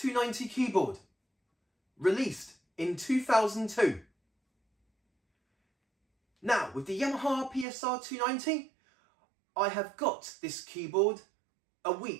keyboard, released in 2002. Now, with the Yamaha PSR-290, I have got this keyboard a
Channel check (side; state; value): left; drops out; at 7.7 s